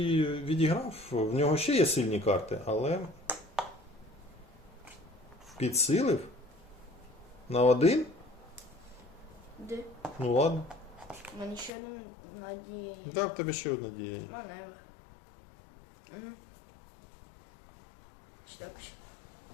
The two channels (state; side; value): drops out; right; at 11.7 s